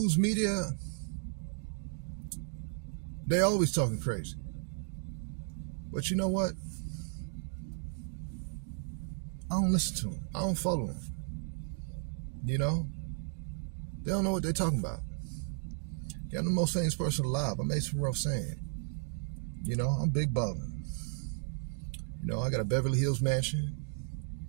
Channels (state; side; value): silent; left; digital silence